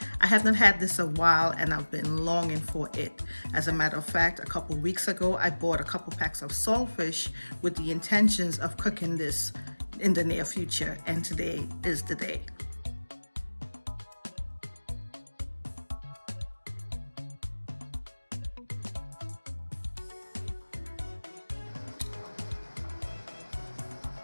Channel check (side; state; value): both; inverted; correlation -1.00